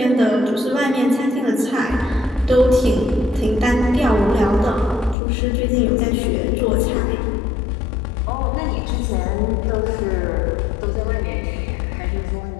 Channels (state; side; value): drops out; right; at 5.2 s